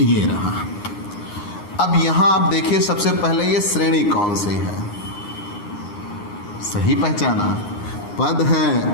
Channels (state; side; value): late; right; 9.7 ms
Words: ये रहा। अब यहाँ आप देखिए, सबसे पहले ये श्रेणी कौन सी है? सही पहचाना, पद